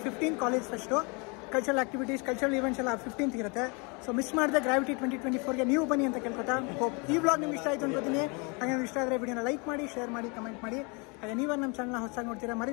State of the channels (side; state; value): right; quieter; 31.5 dB